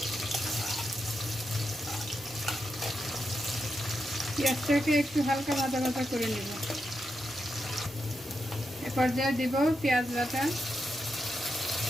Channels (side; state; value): both; normal; correlation 0.85